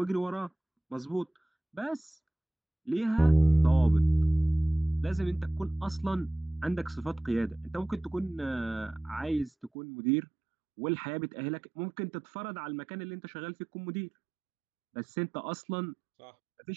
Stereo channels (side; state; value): left; drops out; at 9.7 s